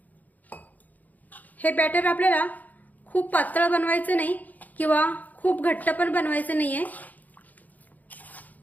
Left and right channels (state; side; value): late; right; 0.080 ms